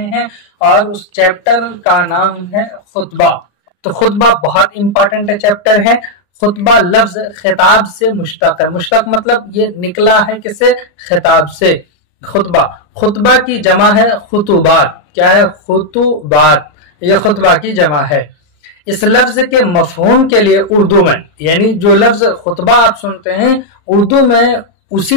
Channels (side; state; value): right; late; 34 ms